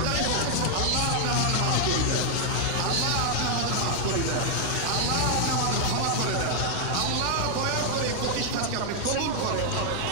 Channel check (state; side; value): different; both; correlation 0.00